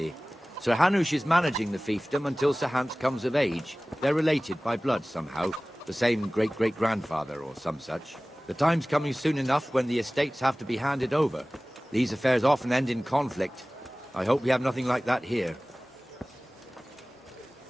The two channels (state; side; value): normal; both; correlation 0.98